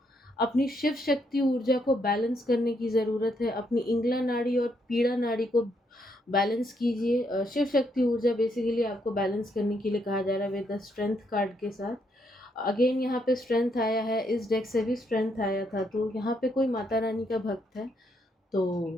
अपनी शिव शक्ति ऊर्जा को बैलेंस करने की ज़रूरत है। अपनी इंगला नाड़ी और पीड़ा नाड़ी को बैलेंस कीजिए। शिव शक्ति ऊर्जा बेसिकली आपको बैलेंस करने के लिए कहा जा रहा है विद द स्ट्रेंथ कार्ड के साथ। अगेन यहाँ पे स्ट्रेंथ आया है, इस डेक से भी स्ट्रेंथ आया था। तो यहाँ पे कोई माता रानी का भक्त है,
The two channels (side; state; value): both; normal; correlation 0.75